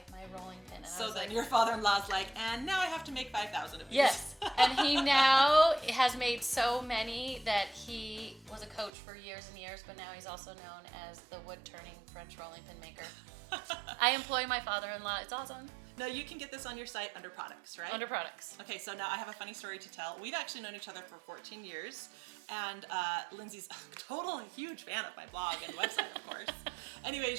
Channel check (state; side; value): drops out; left; at 8.9 s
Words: my rolling pin. And I So was then like, your father-in-law's like, and now I have to make 5,000 of these. yes, and he now has made so many that he was a coach for years and years, but now he's also known as the wood-turning French rolling pin maker. I employ my father-in-law. It's awesome. Now you can get this on your site under products, right? Under products. Okay, so now I have a funny story to tell. We've actually known each other for 14 years, and Lindsay's a total huge fan of my blog and website, of course. Anyway,